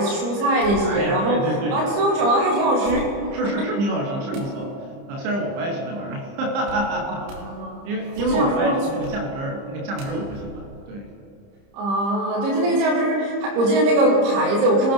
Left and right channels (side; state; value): left; late; 30 ms